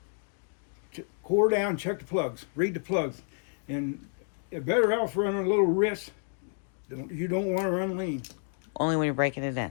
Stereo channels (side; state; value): right; silent; 58 dB below the other